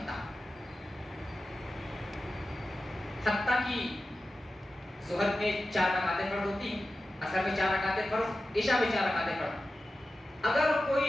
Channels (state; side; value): normal; both; correlation 0.93